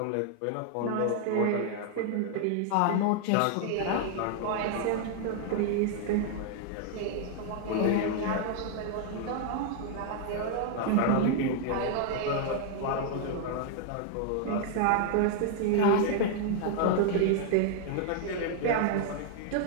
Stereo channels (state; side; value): different; both; correlation 0.00